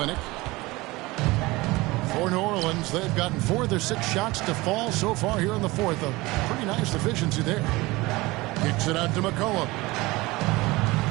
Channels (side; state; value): left; quieter; 21.4 dB